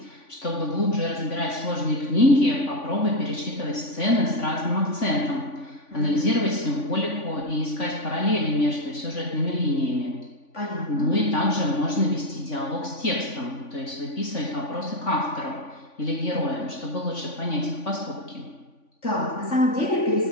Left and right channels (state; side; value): late; right; 3.5 ms